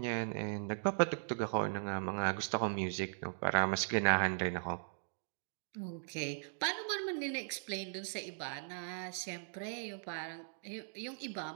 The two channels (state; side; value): silent; left; digital silence